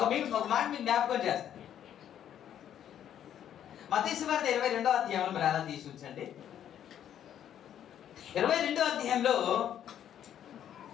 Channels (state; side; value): quieter; right; 10.2 dB